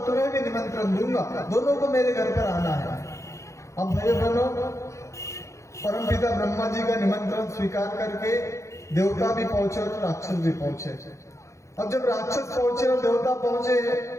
तुम्हें भी निमंत्रण दूंगा, दोनों को मेरे घर पर आना है। अब भाई बहनों, परमपिता ब्रह्मा जी का निमंत्रण स्वीकार करके देवता भी पहुंचे और राक्षस भी पहुंचे। अब जब राक्षस पहुंचे और देवता पहुंचे,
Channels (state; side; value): late; right; 0.15 ms